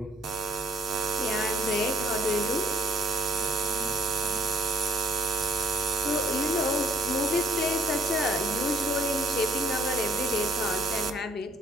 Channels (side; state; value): both; normal; correlation 0.62